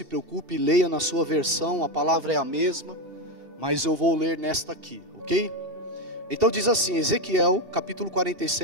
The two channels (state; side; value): late; left; 2.7 ms